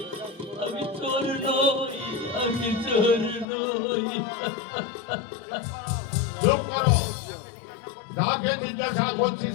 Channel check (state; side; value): drops out; right; at 3.5 s